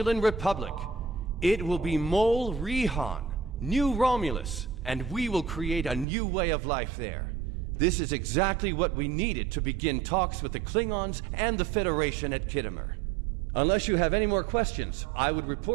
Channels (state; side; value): drops out; left; at 6.1 s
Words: Republic. It will be Mol Rihan, New Romulus, and we will create a new way of life there. This is exactly what we needed to begin talks with the Klingons and the Federation at Khitomer. Unless you have any more questions, I would